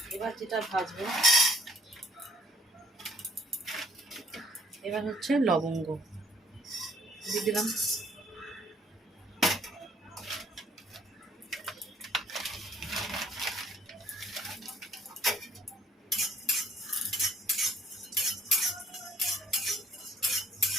এবার যেটা ভাজবো, এবার হচ্ছে লবঙ্গ দিয়ে দিলাম।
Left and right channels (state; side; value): normal; both; correlation 0.63